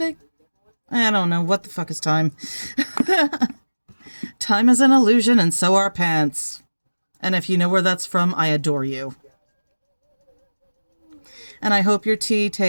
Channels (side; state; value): both; inverted; correlation -1.00